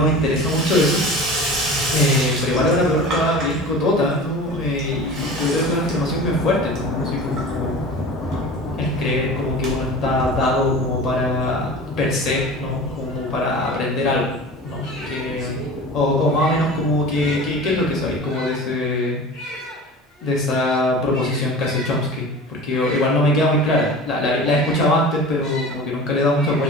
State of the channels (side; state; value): both; normal; correlation 0.37